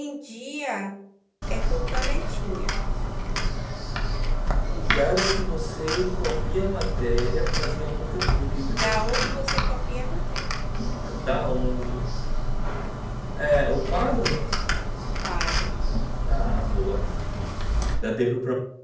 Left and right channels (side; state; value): both; identical; correlation 1.00